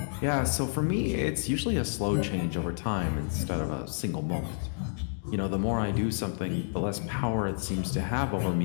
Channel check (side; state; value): right; silent; digital silence